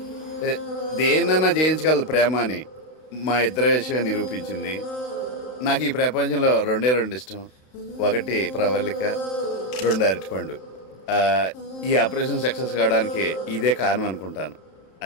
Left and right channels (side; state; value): right; late; 32 ms